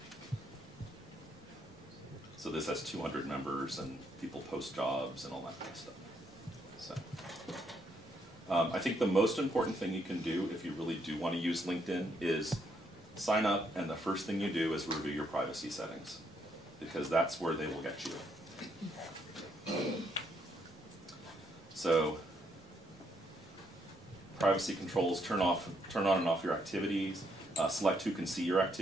So this has 200 members and people post jobs and all that kind of stuff. So I think the most important thing you can do if you really do want to use LinkedIn is sign up, and the first thing you do is review your privacy settings, because that's where they will get you. So privacy controls, turn on and off your activities, select who can see your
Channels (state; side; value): normal; both; correlation 0.74